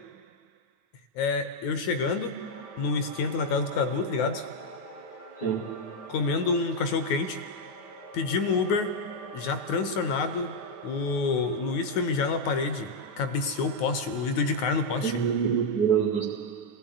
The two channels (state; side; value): late; right; 9.4 ms